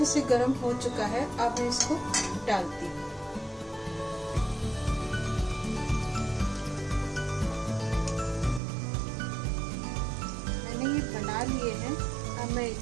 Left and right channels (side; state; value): left; drops out; at 8.6 s